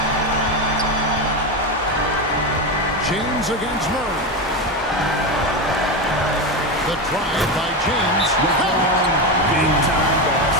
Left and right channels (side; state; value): both; normal; correlation 0.15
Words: James against Murray. The drive by James. Big time